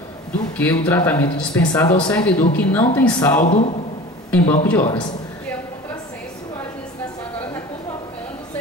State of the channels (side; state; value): both; normal; correlation 0.38